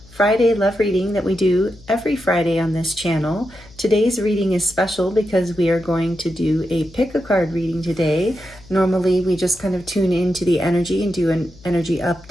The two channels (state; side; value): noise; left; hum, 23 dB below the sound